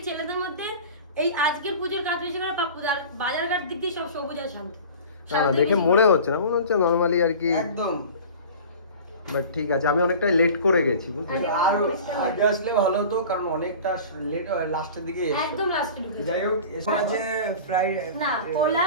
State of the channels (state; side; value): inverted; both; correlation -0.38